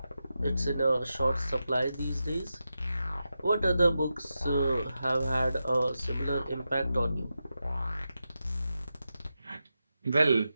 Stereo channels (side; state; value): both; inverted; correlation -0.90